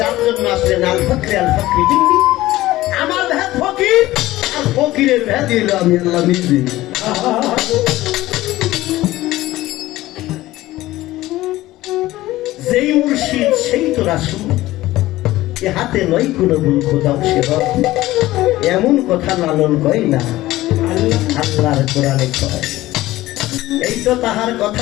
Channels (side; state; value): right; quieter; 16.7 dB